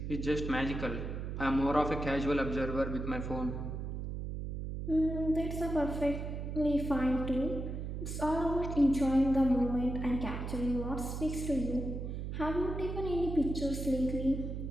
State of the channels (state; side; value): noise; right; hum, 5 dB below the sound